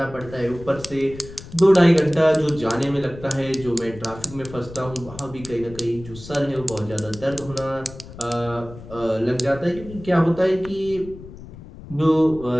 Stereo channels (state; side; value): noise; left; rumble, 16 dB below the sound